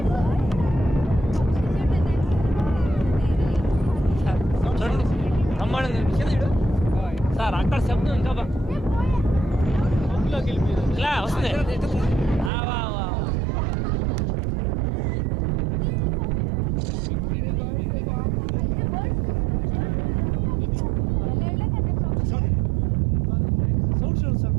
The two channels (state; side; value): drops out; left; at 12.5 s